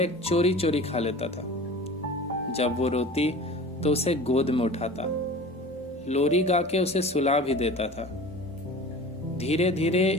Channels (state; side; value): normal; both; correlation 0.38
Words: चोरी चोरी खा लेता था। जब वो रोती तो उसे गोद में उठाता, लोरी गा के उसे सुला भी देता था। धीरे